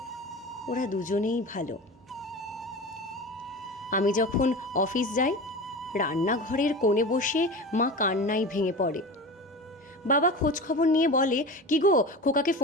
ওরা দুজনেই ভালো। আমি যখন অফিস যাই, রান্নাঘরের কোণে বসে মা কান্নায় ভেঙে পড়ে। বাবা খোঁজ খবর নিয়ে বলে, কি গো, খোকাকে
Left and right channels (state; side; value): normal; both; correlation 0.30